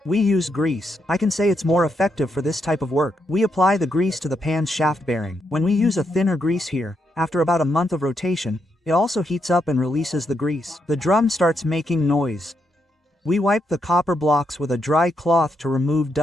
We use grease. I can say it's more effective for this type of work. We apply the grease to the pan's shaft bearing. When we use a thinner grease here, after about a month of rotation, it also heats up and releases the grease. The drum starts making noise. We wipe the copper blocks with a dry cloth to remove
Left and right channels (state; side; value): normal; both; correlation 0.80